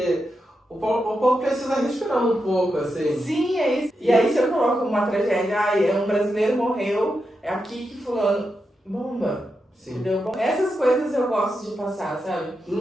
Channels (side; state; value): both; normal; correlation 0.87